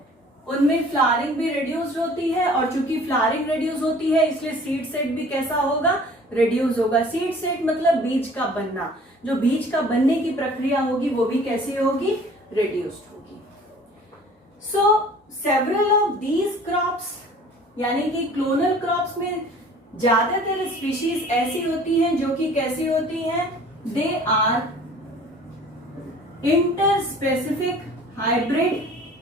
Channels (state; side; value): normal; both; correlation 0.49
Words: उनमें flowering भी reduced होती है, और चूंकि फ्लावरिंग रिड्यूस होती है इसलिए सीड सेट भी कैसा होगा, रिड्यूस होगा. सीड सेट मतलब बीज का बनना, जो बीज का बनने की प्रक्रिया होगी वो भी कैसी होगी, रिड्यूस्ड होगी. सो सेवरल ऑफ दीज क्रॉप्स, यानी कि क्लोनल क्रॉप्स में ज्यादातर स्पीशीज ऐसी होती हैं जो कि कैसी होती हैं, दे आर इंटरस्पेसिफिक हाइब्रिड,